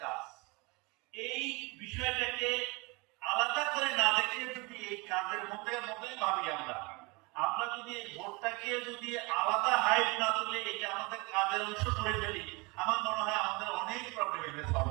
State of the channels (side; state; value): left; quieter; 26.9 dB